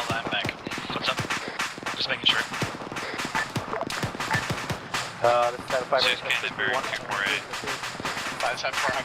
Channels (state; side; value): identical; both; correlation 1.00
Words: land back. What's up? Just making sure. This is 5 Six Canterbury, 248. 574,